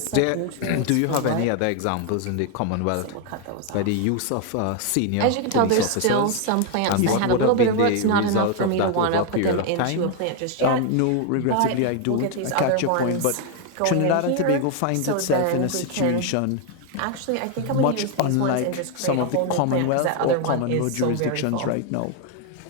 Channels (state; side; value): different; both; correlation 0.01